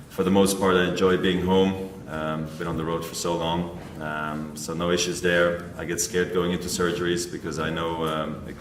for the most part, I enjoy being home. Been on the road for so long. So no issues there. I get scared going into surgeries because I know it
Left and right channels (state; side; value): identical; both; correlation 1.00